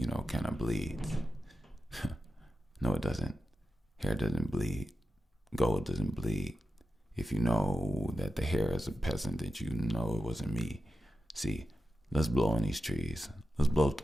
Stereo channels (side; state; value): both; normal; correlation 0.92